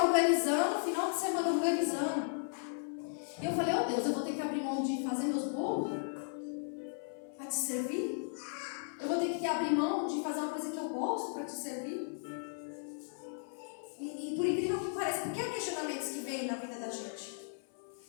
organizando, final de semana organizando. E eu falei: oh Deus, eu vou ter que abrir mão de fazer meus bolos para te servir? Eu vou ter que abrir mão de fazer uma coisa que eu gosto para te servir? E por incrível que pareça, porque há questionamentos que vêm na vida da gente.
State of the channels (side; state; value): right; silent; 54 dB below the other